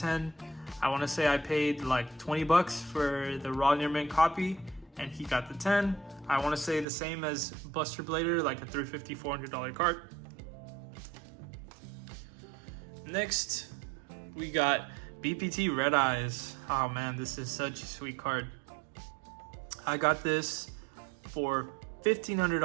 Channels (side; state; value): left; drops out; at 6.9 s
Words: I want to say I paid like $20 for the raw near mint copy, and he got the 10. I want to say the same as Buster Blader, like a $350, $400 card. Next, we got BPT Red Eyes. Oh man, this is such a sweet card. I got this for